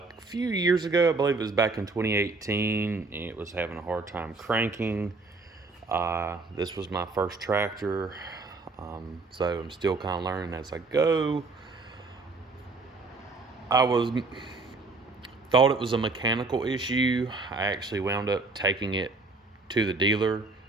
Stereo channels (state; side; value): quieter; left; 3.6 dB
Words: few years ago, I believe it was back in 2018, it was having a hard time cranking. This was my first tractor, so I'm still kind of learning as I go. Thought it was a mechanical issue. I actually wound up taking it to the dealer,